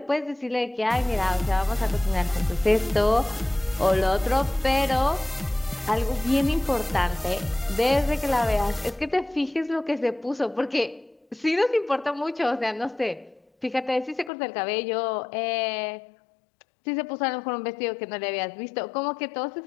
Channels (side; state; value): right; drops out; at 14.3 s